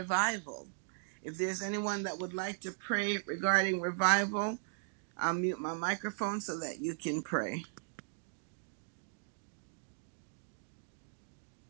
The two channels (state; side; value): silent; left; digital silence